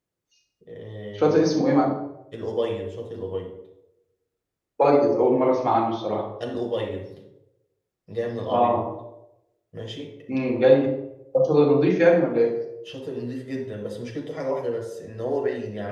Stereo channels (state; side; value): identical; both; correlation 1.00